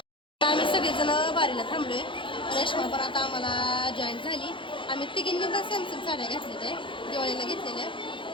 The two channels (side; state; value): right; late; 0.25 ms